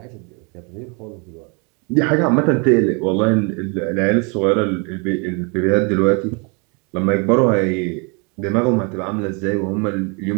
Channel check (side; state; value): left; quieter; 33.1 dB